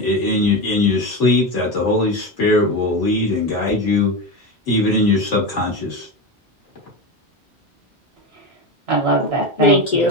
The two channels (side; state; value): both; normal; correlation 0.19